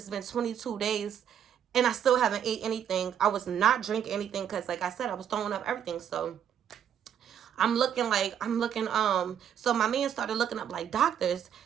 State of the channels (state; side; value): quieter; left; 9.2 dB